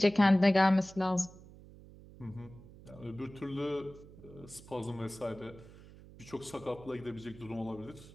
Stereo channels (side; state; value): right; noise; hum, 19 dB below the sound